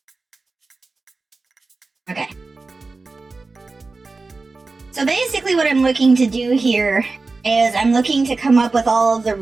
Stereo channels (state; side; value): quieter; left; 3.7 dB